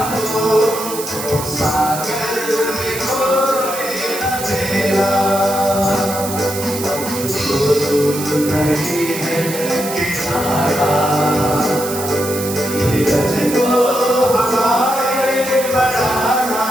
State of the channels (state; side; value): noise; right; hiss, 8 dB below the sound